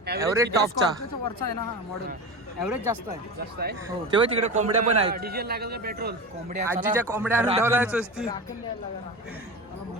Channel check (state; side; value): normal; both; correlation 0.26